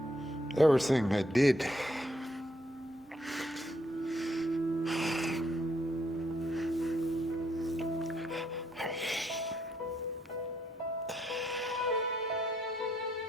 Everything I did.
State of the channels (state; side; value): normal; both; correlation 0.73